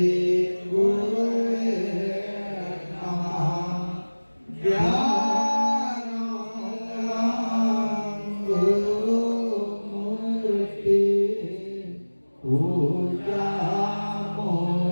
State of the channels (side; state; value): both; inverted; correlation -1.00